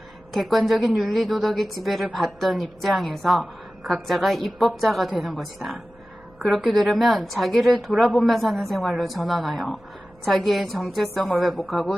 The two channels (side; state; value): right; noise; hum, 30 dB below the sound